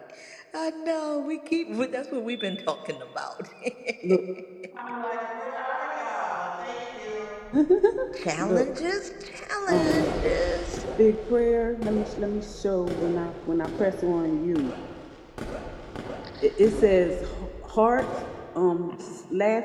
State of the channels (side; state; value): both; identical; correlation 1.00